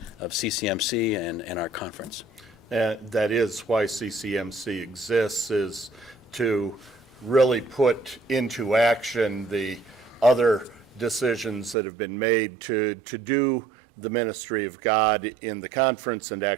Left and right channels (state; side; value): drops out; left; at 11.8 s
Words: of CCMC and our conference. That is why CCMC exists, is to really put into action the other decisions that have been made to do the ministry of God in the conference and